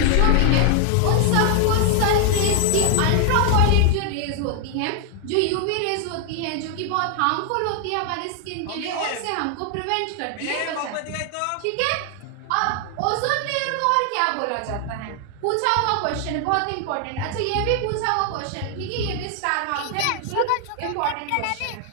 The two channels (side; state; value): both; different; correlation 0.00